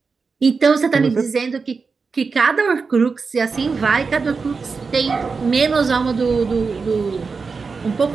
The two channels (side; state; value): left; quieter; 4.8 dB